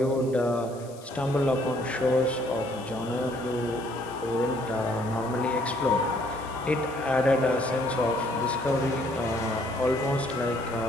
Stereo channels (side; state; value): left; noise; hiss, 22 dB below the sound